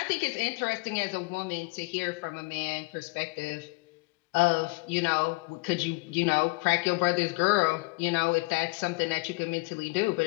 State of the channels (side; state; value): right; quieter; 27.4 dB